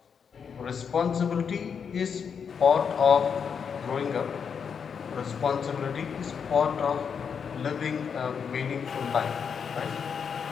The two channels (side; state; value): right; quieter; 6.7 dB